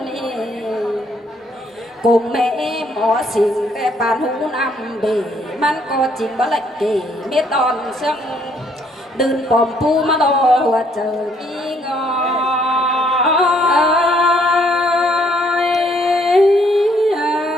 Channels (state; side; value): normal; both; correlation 0.67